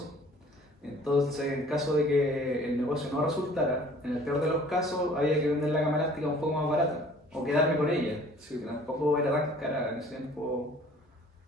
Entonces, en caso de que el negocio no resultara, en el peor de los casos, había que vender la cama elástica un poco más barata o quedarme con ella. Sí, que tampoco era tan cara en ese tiempo.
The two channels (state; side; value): normal; both; correlation 0.51